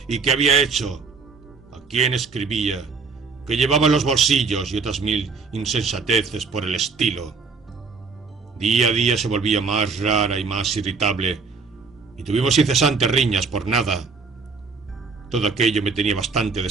y qué había hecho, a quién escribía, qué llevaba en los bolsillos y otras 1000 insensateces por el estilo. Día a día se volvía más rara y más irritable, y tuvimos incesantes riñas por nada. Todo aquello me tenía bastante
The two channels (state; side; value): quieter; left; 4.6 dB